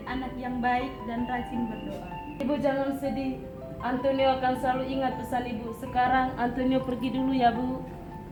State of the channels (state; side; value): identical; both; correlation 1.00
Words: anak yang baik dan rajin berdoa. Ibu jangan sedih. Antonio akan selalu ingat pesan ibu. Sekarang Antonio pergi dulu ya, Bu.